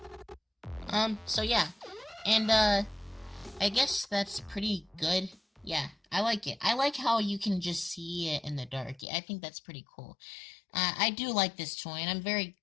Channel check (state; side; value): drops out; right; at 9.1 s